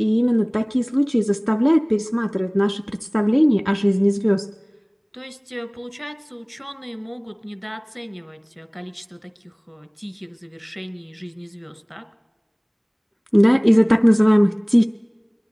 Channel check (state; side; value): identical; both; correlation 1.00